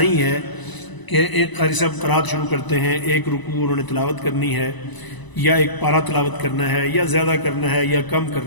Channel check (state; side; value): late; right; 1.0 ms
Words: ہے کہ ایک قاری صاحب قرات شروع کرتے ہیں، ایک رکوع انہوں نے تلاوت کرنی ہے یا ایک پارہ تلاوت کرنا ہے یا زیادہ کرنا ہے یا کم